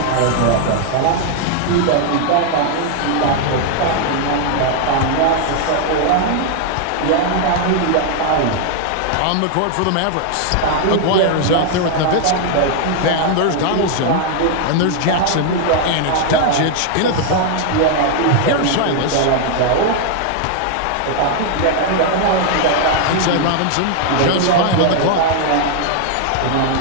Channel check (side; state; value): both; different; correlation 0.00